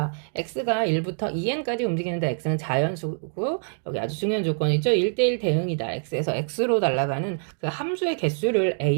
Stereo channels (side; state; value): left; silent; 62 dB below the other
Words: x가 1부터 2n까지 움직이는데 x는 자연수고 여기 아주 중요한 조건이죠. 1대1 대응이다. x에서 x로 날아가는 그 함수의 개수를